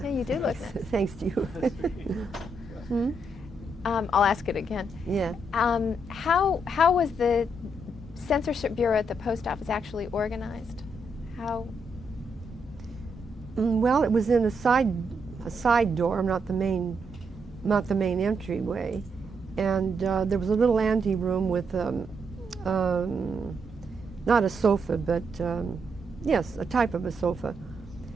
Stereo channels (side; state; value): both; normal; correlation 0.79